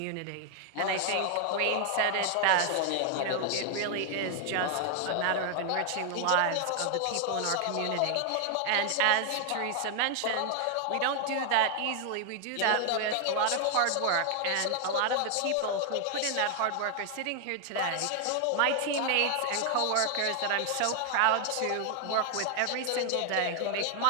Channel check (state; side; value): different; both; correlation 0.00